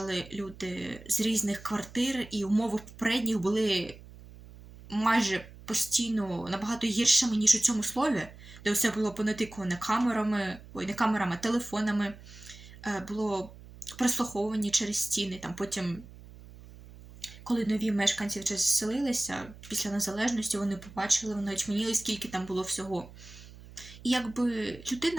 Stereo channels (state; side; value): noise; right; hum, 18 dB below the sound